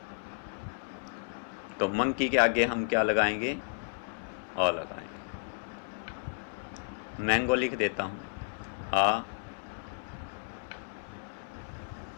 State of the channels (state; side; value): silent; right; digital silence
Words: तो मंकी के आगे हम क्या लगाएंगे, अ लगाएंगे। मैंगो लिख देता हूँ, आ